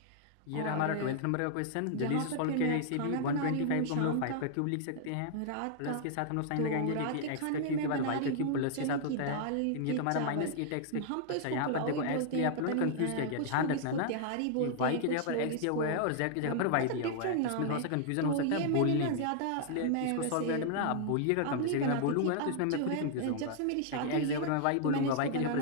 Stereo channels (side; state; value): both; different; correlation -0.01